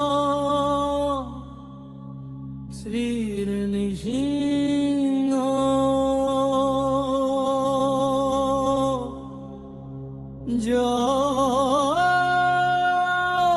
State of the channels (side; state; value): both; identical; correlation 1.00